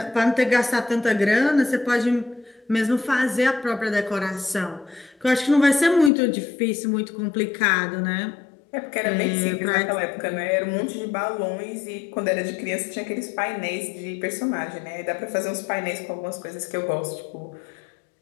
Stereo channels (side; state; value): right; drops out; at 6.1 s